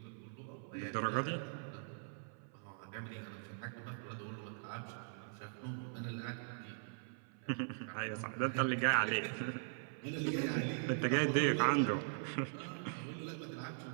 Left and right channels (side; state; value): left; silent; 51 dB below the other